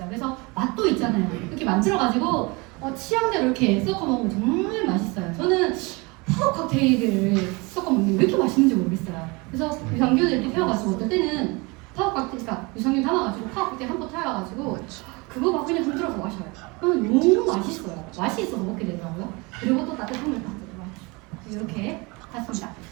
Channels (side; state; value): left; quieter; 26.7 dB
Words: 그래서 맛도 있잖아요. 이렇게 만들어가지고 취향대로 이렇게 섞어 먹으면 정말 맛있어요. 저는 파워 칵테일을 섞어 먹는 게 왜 이렇게 맛있는지 모르겠어요. 그래서 유산균을 이렇게 태워가지고 어떨 때는 파워 칵테일, 그러니까 유산균 담아가지고 파워 칵테일 한 번 태워가지고 그거 막 그냥 흔들어서 마셔요. 그러면 너무 맛있어요. 맛이 있어서 먹게 되더라고요. 그리고 또 따뜻한 물 딱 이렇게 했습니다.